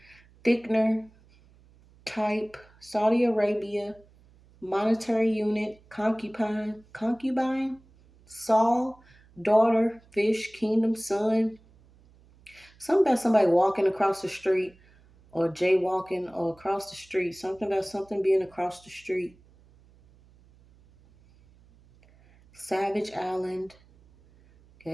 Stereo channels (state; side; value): noise; right; hum, 28 dB below the sound